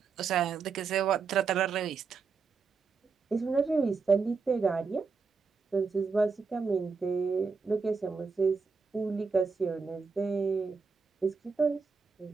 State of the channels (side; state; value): left; quieter; 5.0 dB